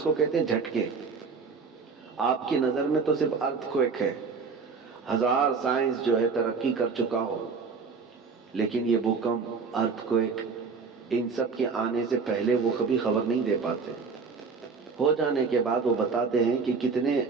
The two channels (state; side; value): quieter; left; 5.0 dB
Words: کو کہتے ہیں؟ جھٹکے۔ آپ کی نظر میں تو صرف ارتھ کوئک ہے، ہزار سائنس جو ہے ترقی کر چکا ہو، لیکن یہ بھوکمپ، ارتھ کوئک، ان سب کے آنے سے پہلے وہ کبھی خبر نہیں دے پاتے۔ ہو جانے کے بعد وہ بتاتے ہیں کہ